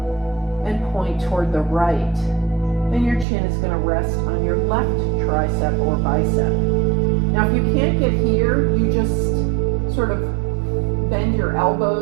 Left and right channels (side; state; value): left; drops out; at 3.2 s